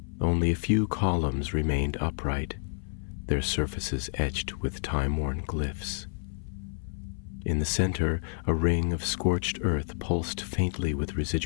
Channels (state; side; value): silent; right; 57 dB below the other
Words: Only a few columns remained upright, their surfaces etched with time-worn glyphs. In the center, a ring of scorched earth pulsed faintly with